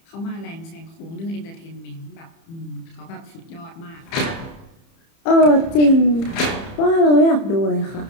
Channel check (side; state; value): right; late; 30 ms